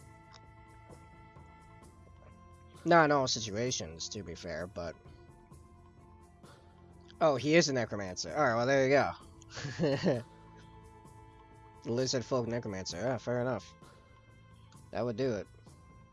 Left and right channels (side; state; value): both; identical; correlation 1.00